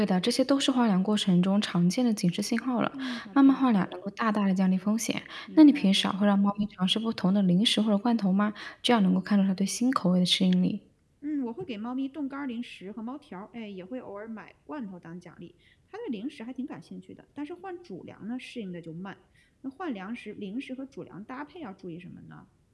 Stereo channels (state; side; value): identical; both; correlation 1.00